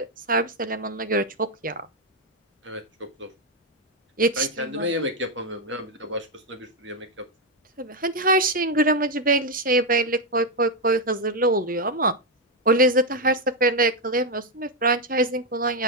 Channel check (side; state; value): both; normal; correlation 0.03